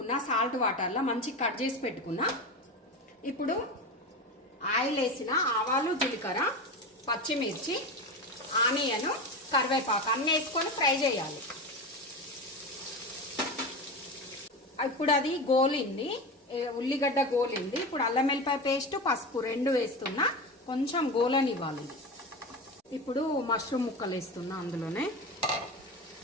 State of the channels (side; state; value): both; normal; correlation 0.24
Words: సాల్ట్ వాటర్లో మంచి కట్ చేసి పెట్టుకున్నా. ఇప్పుడు ఆయిల్ వేసిన ఆవాలు, జీలకర్ర, పచ్చిమిర్చి, ఆనియన్, కరివేపాకు అన్నీ వేసుకొని ఫ్రై చేయాలి. ఇప్పుడు అది గోలింది, ఉల్లిగడ్డ గోలింది. ఇప్పుడు అల్లం వెల్లిపాయ పేస్ట్, పసుపు 2 వేస్తున్నా, కొంచెం గోలనివ్వాలి. ఇప్పుడు మష్రూమ్ ముక్కలు వేస్తున్నా, అందులోనే